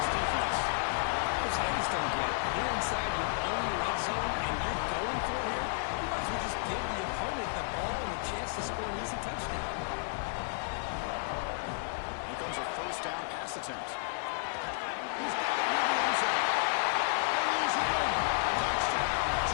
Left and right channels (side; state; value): right; silent; 56 dB below the other